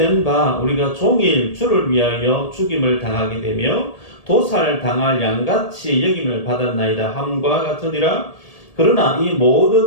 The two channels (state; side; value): late; right; 1.8 ms